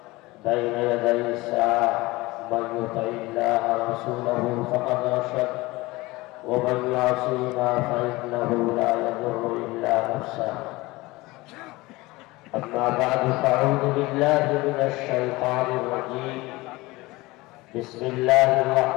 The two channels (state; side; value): quieter; right; 21.2 dB